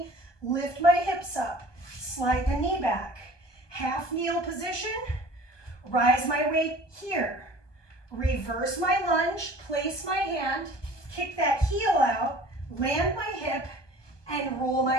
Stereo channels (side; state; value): right; late; 1.2 ms